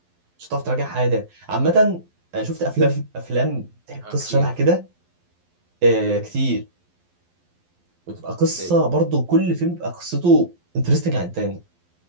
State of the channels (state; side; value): late; left; 11 ms